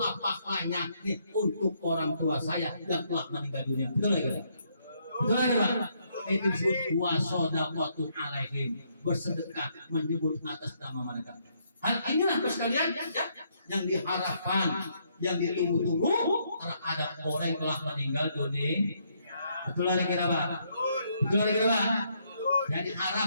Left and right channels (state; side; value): inverted; both; correlation -0.72